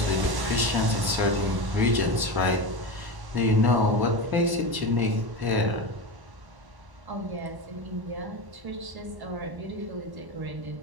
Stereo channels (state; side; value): late; left; 1.1 ms